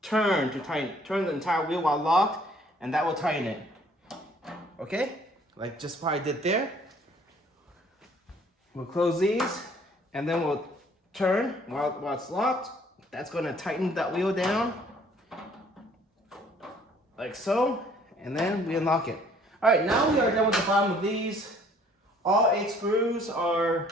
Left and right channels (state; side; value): normal; both; correlation 0.59